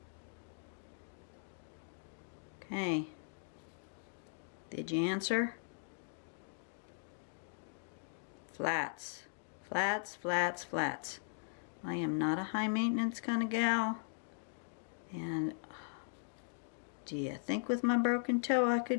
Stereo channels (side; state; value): right; silent; digital silence